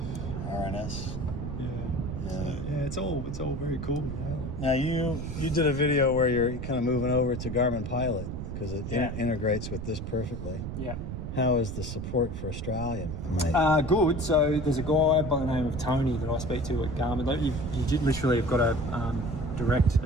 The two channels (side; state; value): right; noise; rumble, 6 dB below the sound